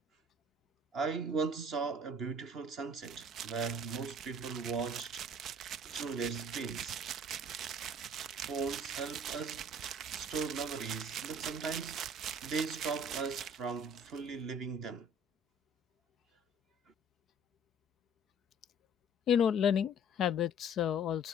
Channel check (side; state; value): both; normal; correlation 0.52